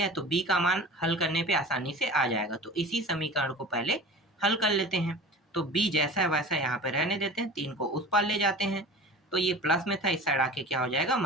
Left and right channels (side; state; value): both; normal; correlation 0.37